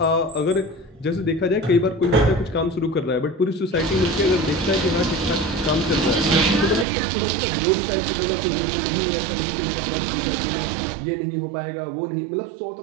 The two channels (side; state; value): left; drops out; at 6.9 s